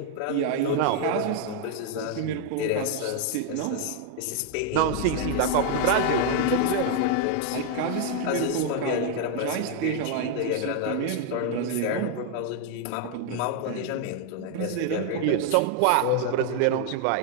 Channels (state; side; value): different; both; correlation 0.00